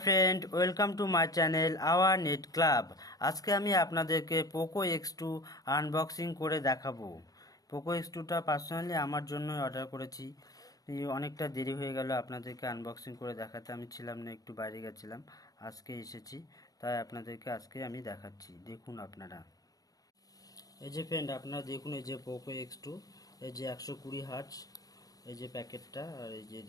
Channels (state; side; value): late; right; 0.18 ms